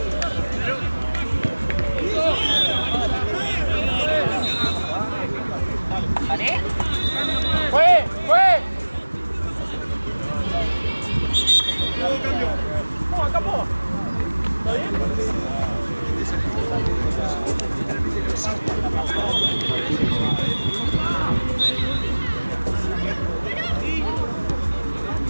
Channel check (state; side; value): inverted; both; correlation -1.00